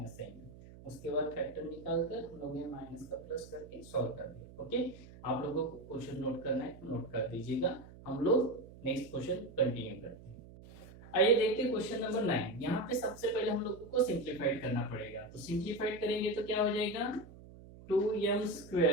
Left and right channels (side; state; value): right; noise; hum, 18 dB below the sound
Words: साइन। उसके बाद फैक्टर निकालकर हम लोग ये माइनस का प्लस करके सॉल्व कर दिया। ओके, आप लोगों को क्वेश्चन नोट करना है तो नोट कर दीजिएगा। हम लोग नेक्स्ट क्वेश्चन कंटिन्यू करते हैं। आइए देखते हैं क्वेश्चन नंबर 9। यहाँ पे सबसे पहले हम लोगों को सिंप्लीफाइड करना पड़ेगा। तो सिंप्लीफाइड करेंगे तो क्या हो जाएगा,